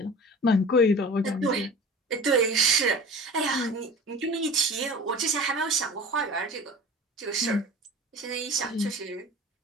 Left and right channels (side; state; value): both; normal; correlation 0.39